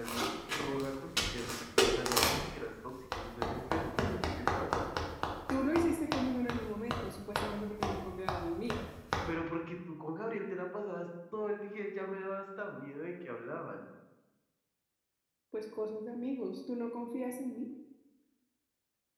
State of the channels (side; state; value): both; identical; correlation 1.00